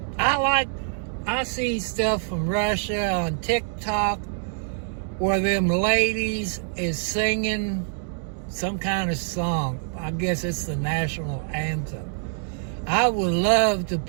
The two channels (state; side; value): silent; left; digital silence